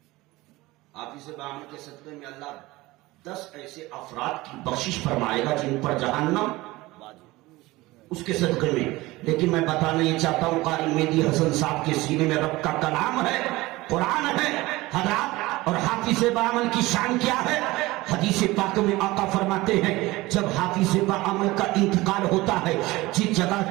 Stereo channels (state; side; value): quieter; left; 19.9 dB